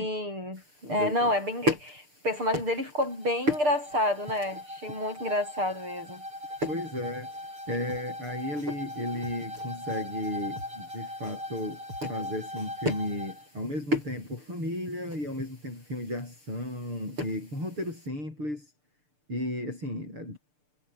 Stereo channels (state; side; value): late; left; 6.7 ms